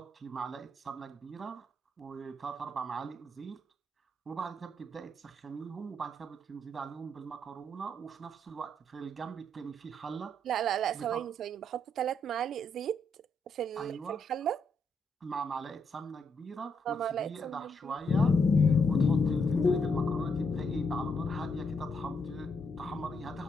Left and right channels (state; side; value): normal; both; correlation 0.76